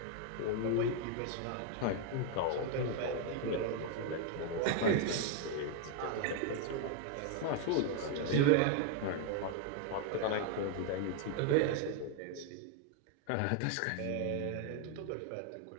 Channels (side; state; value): both; different; correlation 0.00